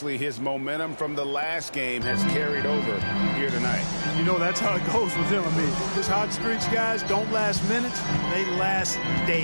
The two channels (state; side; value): inverted; both; correlation -1.00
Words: his momentum from the last game has carried over here tonight. You know, that's how it goes with him. I mean, his hot streaks, guys, don't last minutes. They last